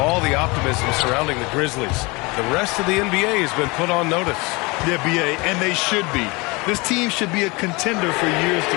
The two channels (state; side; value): quieter; right; 25.7 dB